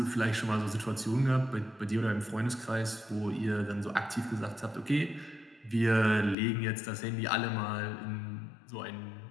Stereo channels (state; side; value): drops out; right; at 6.4 s